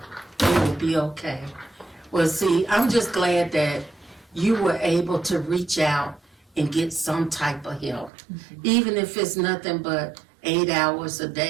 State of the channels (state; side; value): drops out; left; at 8.1 s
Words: It will be okay. Well, see, I'm just glad that you were able to reach out and get some type of help. Even if it's nothing but 8 hours a